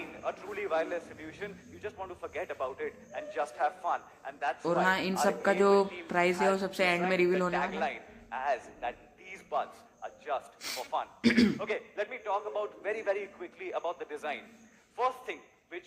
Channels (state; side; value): identical; both; correlation 1.00